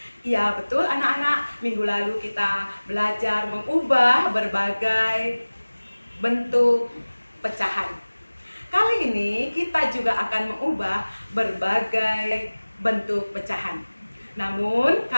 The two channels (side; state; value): both; inverted; correlation -1.00